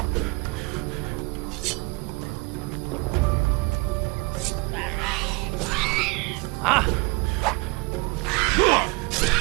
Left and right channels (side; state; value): left; quieter; 26.1 dB